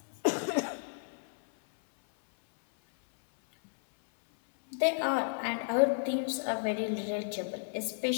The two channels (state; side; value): silent; right; 56 dB below the other